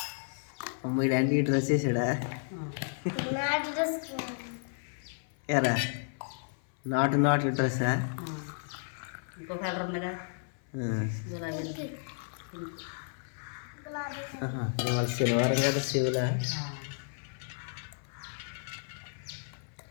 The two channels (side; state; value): right; silent; 55 dB below the other